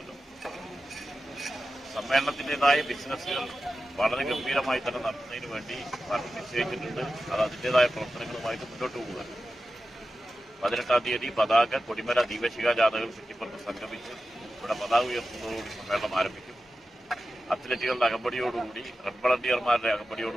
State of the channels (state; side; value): normal; both; correlation 0.93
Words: സമ്മേളനത്തിൻ്റെതായ ബിസിനസ്സുകൾ വളരെ ഗംഭീരമായി തന്നെ നടത്തുന്നതിന് വേണ്ടി പാർട്ടി നിശ്ചയിച്ചിട്ടുണ്ട്. അത് അതിൻ്റെതായ പ്രവർത്തനങ്ങളുമായിട്ട് മുന്നോട്ട് പോകുക. 18-ാം തീയതി പതാക കൊടിമര ദീപശിഖ ജാഥകൾ കുറ്റിപ്പുറത്ത് സംഗമിച്ച് ഇവിടെ പതാക ഉയർത്തുന്നതോടുകൂടി സമ്മേളനം ആരംഭിക്കും. അത്ലറ്റുകളുടെ അകമ്പടിയോടുകൂടി റെഡ് വളണ്ടിയർമാരുടെ